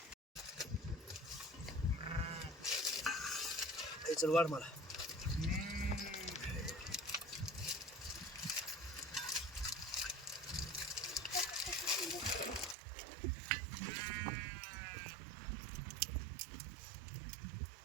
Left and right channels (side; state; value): left; drops out; at 12.8 s